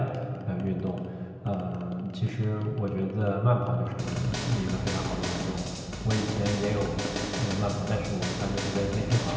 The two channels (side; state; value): both; identical; correlation 1.00